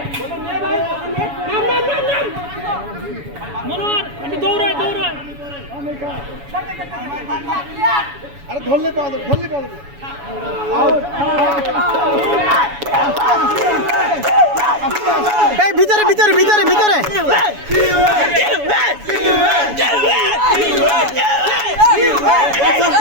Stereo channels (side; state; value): left; late; 7.1 ms